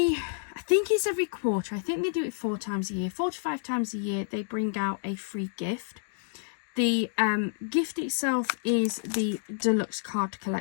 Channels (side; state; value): right; silent; digital silence